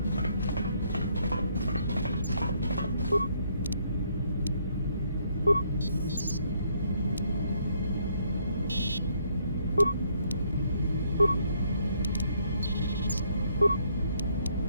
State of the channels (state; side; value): inverted; both; correlation -0.70